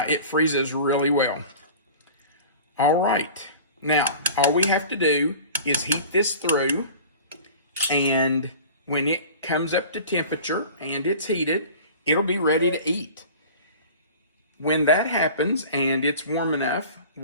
it freezes really well. All right. Now, all we have to do is heat this through, and when it comes up to temperature and it's heated, it'll be ready to eat. When that happens and it's warm enough,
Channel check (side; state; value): both; inverted; correlation -0.40